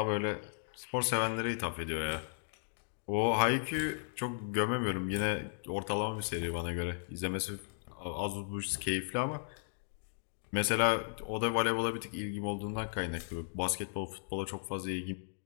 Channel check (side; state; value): right; silent; digital silence